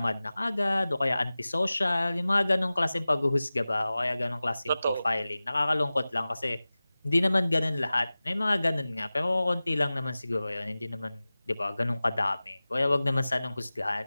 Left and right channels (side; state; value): both; inverted; correlation -0.97